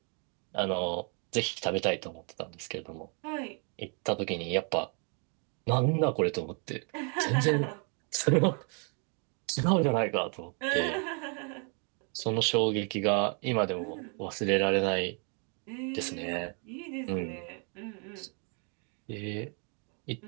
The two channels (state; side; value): quieter; left; 38.3 dB